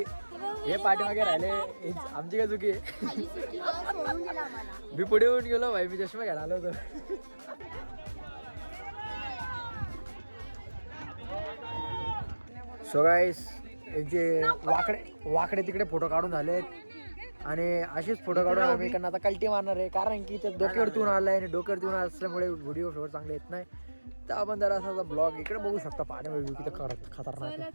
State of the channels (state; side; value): inverted; both; correlation -1.00